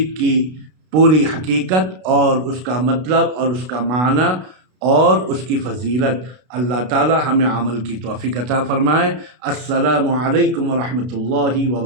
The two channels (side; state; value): left; late; 32 ms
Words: کی پوری حقیقت اور اس کا مطلب اور اس کا معنی اور اس کی فضیلت۔ اللہ تعالی ہمیں عمل کی توفیق عطا فرمائے۔ السلام علیکم ورحمۃ اللہ